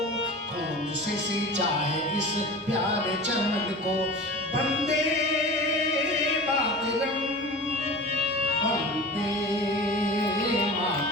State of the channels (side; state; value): both; normal; correlation 0.34